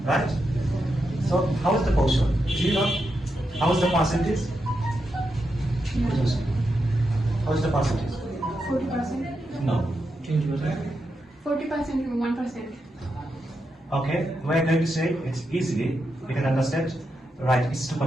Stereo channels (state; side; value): normal; both; correlation 0.85